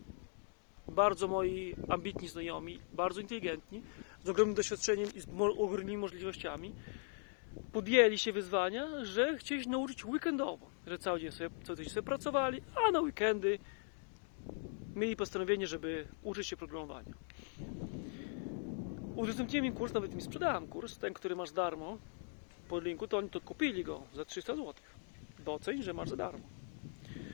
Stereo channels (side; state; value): right; silent; 51 dB below the other